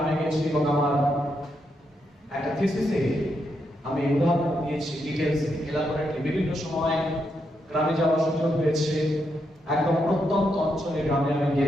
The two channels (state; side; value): normal; both; correlation 0.81